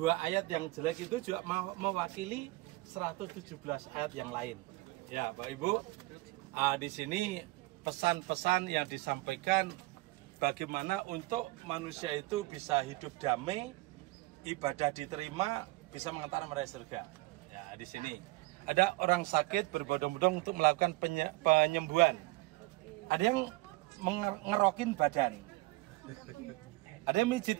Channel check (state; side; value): quieter; left; 21.3 dB